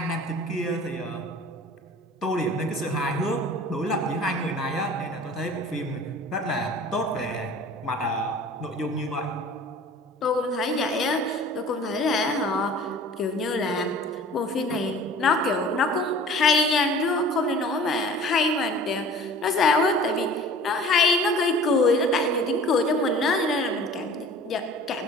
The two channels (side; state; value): both; normal; correlation 0.45